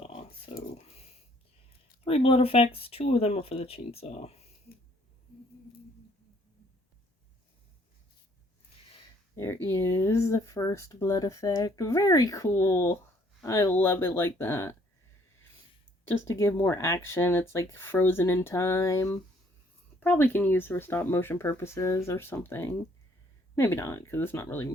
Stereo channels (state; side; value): normal; both; correlation 0.63